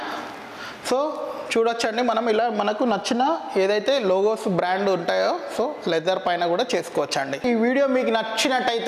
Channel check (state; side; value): identical; both; correlation 1.00